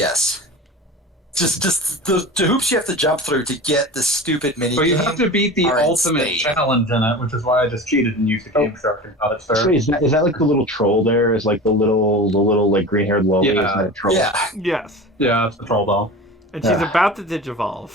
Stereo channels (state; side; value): normal; both; correlation 0.33